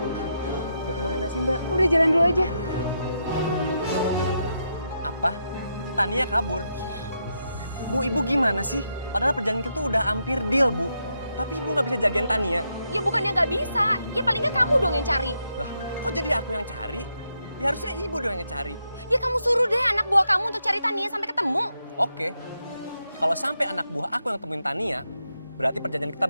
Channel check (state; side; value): inverted; both; correlation -0.82